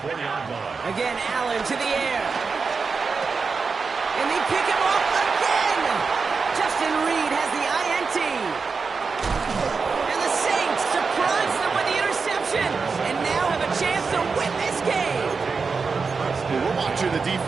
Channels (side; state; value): left; quieter; 4.9 dB